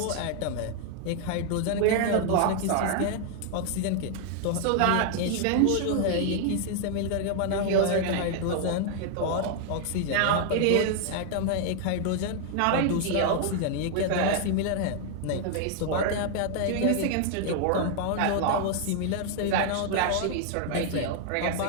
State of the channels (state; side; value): different; both; correlation 0.00